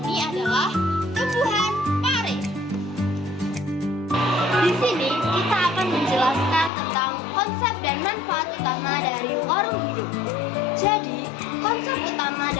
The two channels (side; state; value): right; drops out; at 6.7 s